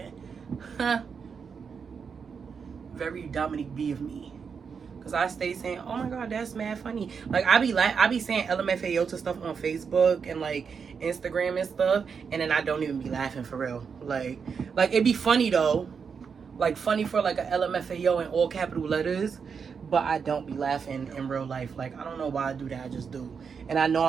Very Dominique B of me. Cause I stay saying, oh my god, that's mad funny. Like, I be saying LMFAO to stuff on Facebook and like Instagram and stuff, and then I don't even be laughing for real. Like it'd be funny though, like funny for like a LMFAO in all capital letters, but I don't be laughing in real life. Like, I don't know why I do that, I just do. And I know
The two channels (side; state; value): left; quieter; 6.1 dB